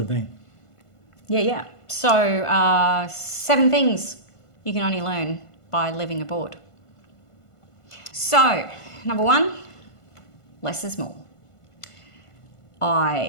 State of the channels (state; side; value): late; right; 1.5 ms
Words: been. Yeah. So 7 things you can only learn by living aboard. So, number 1, less is more.